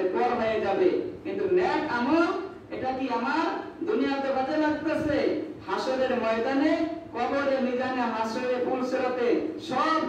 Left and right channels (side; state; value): both; identical; correlation 1.00